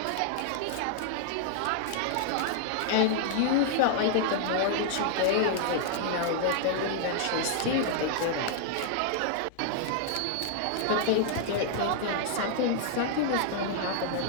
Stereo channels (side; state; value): both; different; correlation -0.01